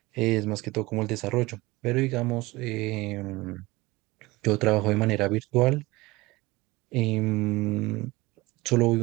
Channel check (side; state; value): left; quieter; 21.1 dB